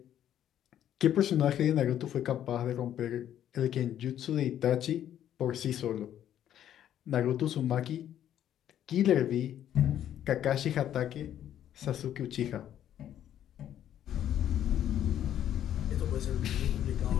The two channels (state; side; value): quieter; right; 10.8 dB